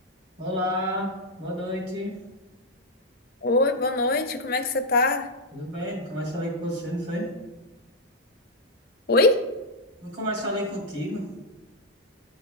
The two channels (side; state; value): both; normal; correlation -0.03